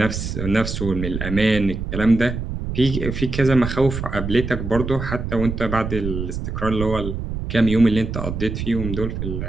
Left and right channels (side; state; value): right; noise; rumble, 5 dB below the sound